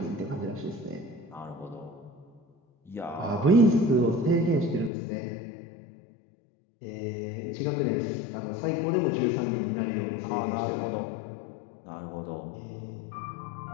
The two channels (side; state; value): right; drops out; at 4.9 s